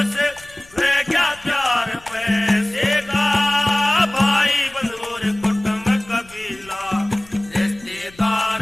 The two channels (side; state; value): left; noise; rumble, 24 dB below the sound